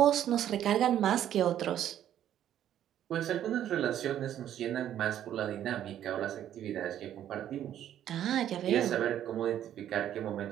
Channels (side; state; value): left; quieter; 11.0 dB